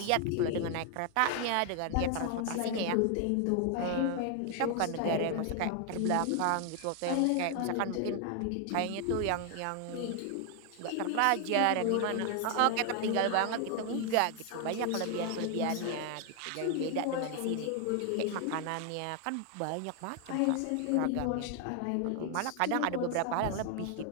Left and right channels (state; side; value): different; both; correlation 0.00